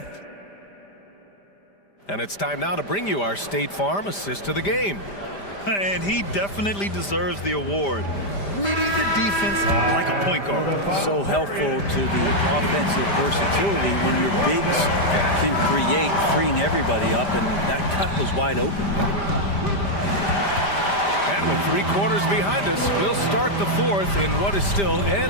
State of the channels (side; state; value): right; late; 5.0 ms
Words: And it's time now to bring you our State Farm assist to the game. And he definitely deserves the award. Reading the defense like a point guard. So helpful to the offensive versatility when your bigs can create, freeing everybody up, and that cut was wide open. And with 3 quarters behind us, we'll start the fourth in what is still